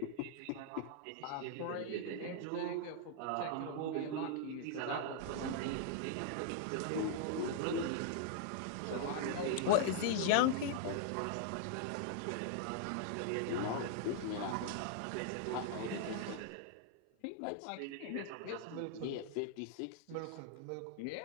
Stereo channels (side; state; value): both; different; correlation -0.01